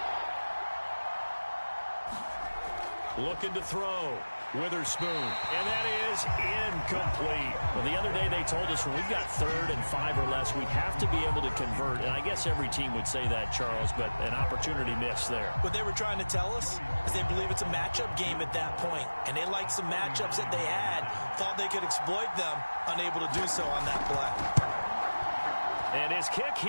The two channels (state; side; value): inverted; both; correlation -1.00